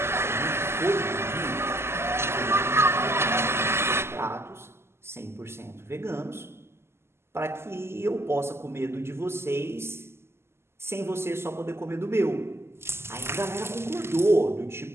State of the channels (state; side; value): late; left; 0.12 ms